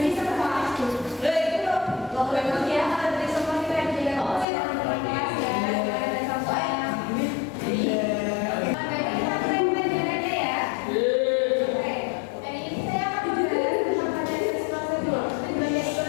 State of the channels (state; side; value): drops out; right; at 4.5 s